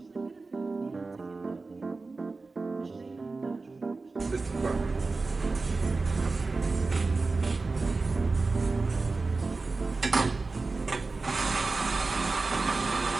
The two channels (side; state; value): left; quieter; 3.8 dB